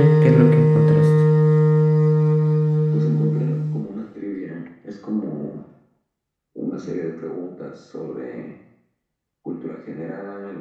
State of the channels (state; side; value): identical; both; correlation 1.00